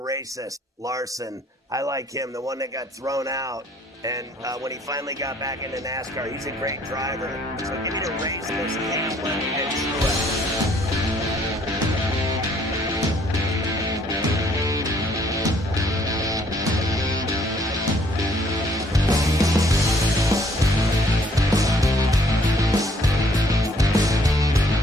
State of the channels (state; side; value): normal; both; correlation 0.63